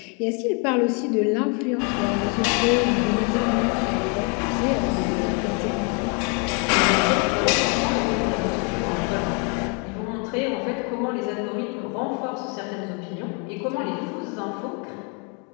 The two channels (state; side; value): quieter; right; 35.0 dB